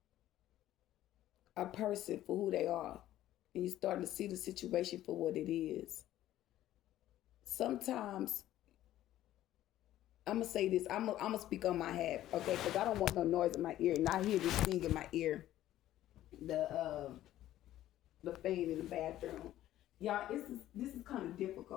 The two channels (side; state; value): right; quieter; 13.5 dB